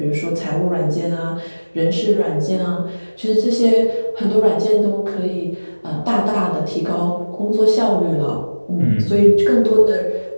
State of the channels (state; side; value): inverted; both; correlation -1.00